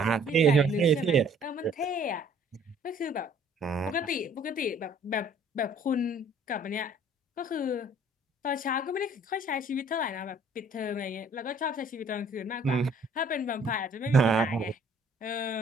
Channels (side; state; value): both; normal; correlation 0.57